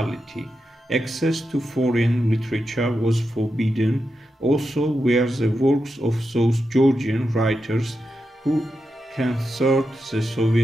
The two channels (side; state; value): both; normal; correlation 0.88